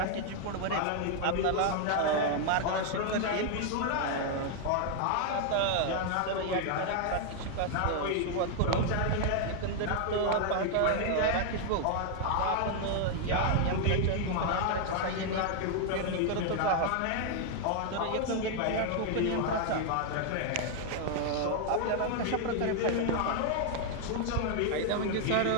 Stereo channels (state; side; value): different; both; correlation 0.00